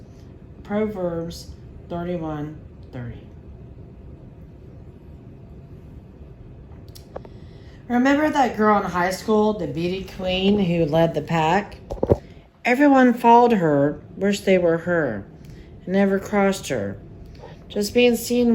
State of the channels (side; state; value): both; identical; correlation 1.00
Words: Proverbs 31:30. Remember that girl in high school, the beauty queen who led the pack? Everyone followed her, wished they were her, and never crossed her. Just being